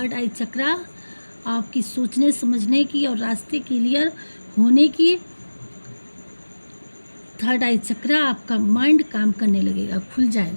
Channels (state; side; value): inverted; both; correlation -1.00